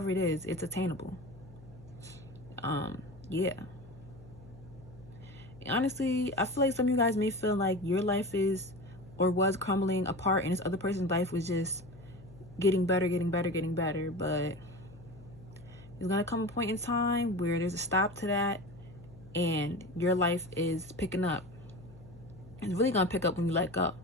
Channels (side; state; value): left; noise; hum, 20 dB below the sound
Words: it is, it's attainable. Yeah. Honestly, I feel like some of you guys may feel like your life is or was crumbling apart and this other person's life was just getting better, but there's gonna come a point in time where there's a stop to that and your life is picking up. It's really gonna pick up when you let go.